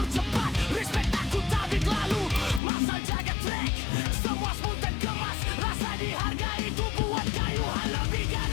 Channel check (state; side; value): drops out; right; at 2.6 s